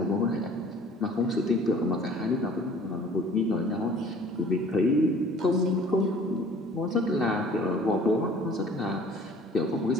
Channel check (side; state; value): both; normal; correlation 0.50